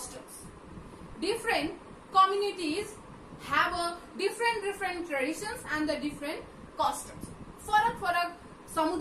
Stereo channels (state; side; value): identical; both; correlation 1.00